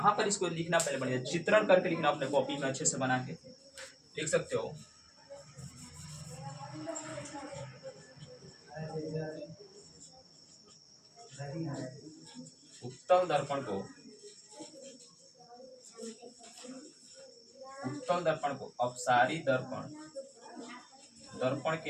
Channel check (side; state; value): both; identical; correlation 1.00